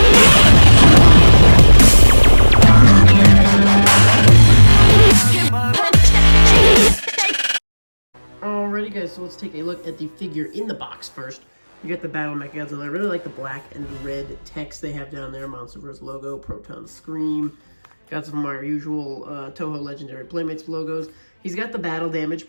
Alrighty guys, so let's take a look at the figure in the box first. You get the Battle Mechagodzilla. I really like the black and red text they have down there. Monsterverse logo, Proton Scream. Got some of our usual Toho Legendary Playmates logos. He's got the battle damage,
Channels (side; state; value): both; inverted; correlation -1.00